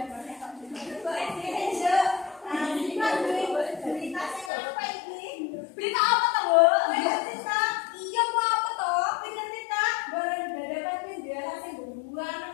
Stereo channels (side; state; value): right; drops out; at 4.5 s